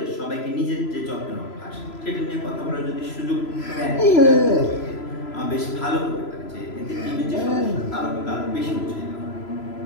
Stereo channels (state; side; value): late; right; 3.0 ms